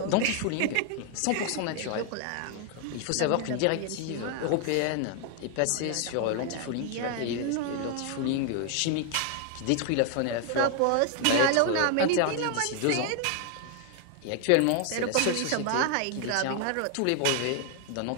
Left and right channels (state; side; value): different; both; correlation 0.00